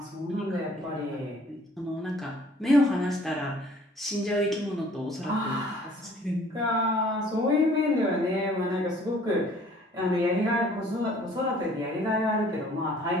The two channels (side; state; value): both; normal; correlation 0.55